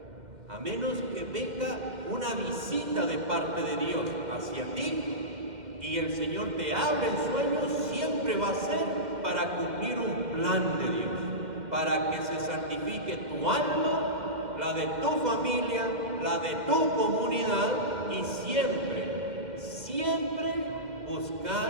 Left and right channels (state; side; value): late; left; 2.1 ms